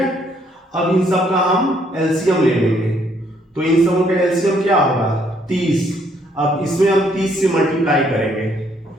अब इन सब का हम एलसीएम ले लेंगे, तो इन सबों का एलसीएम क्या होगा 30। अब इसमें हम 30 से मल्टीप्लाई करेंगे,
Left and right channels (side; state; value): both; normal; correlation 0.68